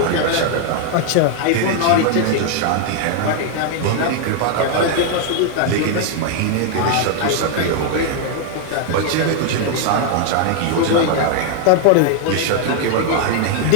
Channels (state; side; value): different; both; correlation 0.00